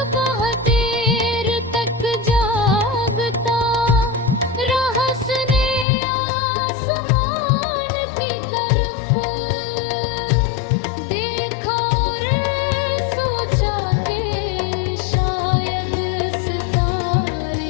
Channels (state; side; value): drops out; right; at 5.9 s